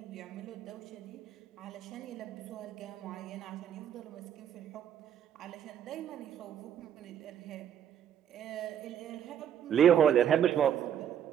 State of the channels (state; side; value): quieter; left; 9.4 dB